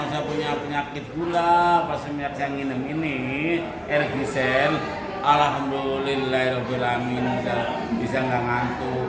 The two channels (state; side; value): identical; both; correlation 1.00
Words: Saya punya penyakit gula. Pas semenjak saya minum ini RG-Cell, alhamdulillahirobbilalamin, bisa nggak